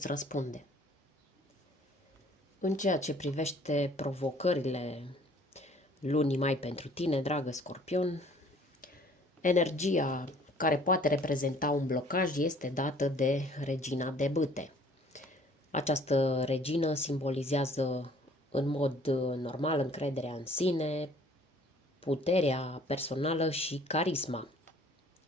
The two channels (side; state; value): both; normal; correlation 0.55